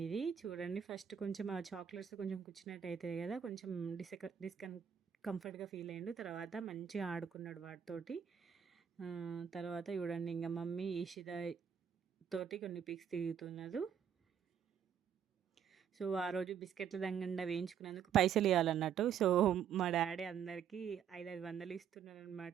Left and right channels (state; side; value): quieter; left; 8.3 dB